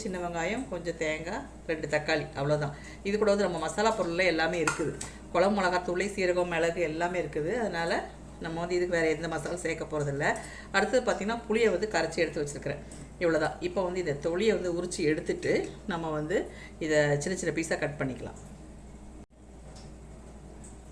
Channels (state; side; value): identical; both; correlation 1.00